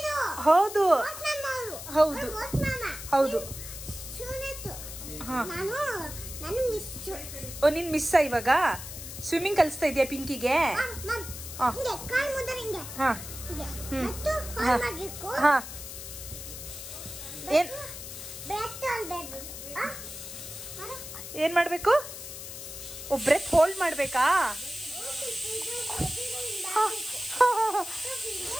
ಹೌದು ಹೌದು ಹೌದು. ಹಾ ಓ ನೀನ್ ಮಿಸ್ ಇವಾಗ ಸ್ವಿಮ್ಮಿಂಗ್ ಕಲಿಸ್ತಾ ಇದೆಯಾ ಪಿಂಕಿಗೆ? ಹಾ ಹಾ ಹಾ ಏನ್ ಮಾಡ್ಬೇಕು? ಬ್ರೆತ್ ಹೋಲ್ಡ್ ಮಾಡ್ಬೇಕಾ?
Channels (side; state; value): left; noise; hiss, 10 dB below the sound